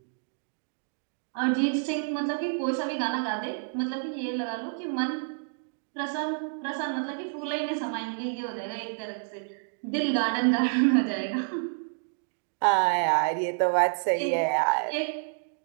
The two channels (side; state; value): left; silent; digital silence